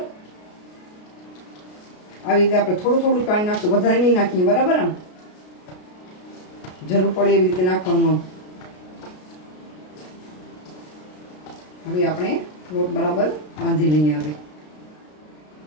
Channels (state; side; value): late; right; 33 ms